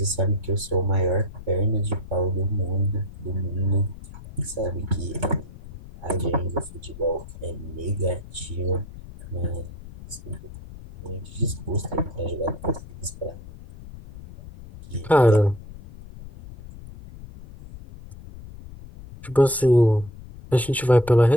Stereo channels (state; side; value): noise; left; rumble, 15 dB below the sound